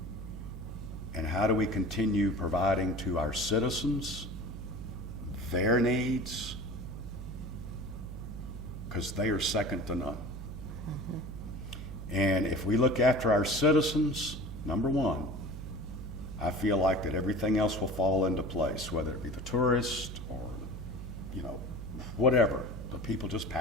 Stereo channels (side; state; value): right; noise; hum, 9 dB below the sound